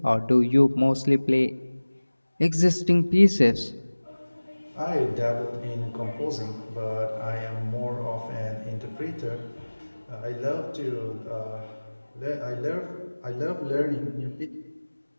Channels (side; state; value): both; inverted; correlation -1.00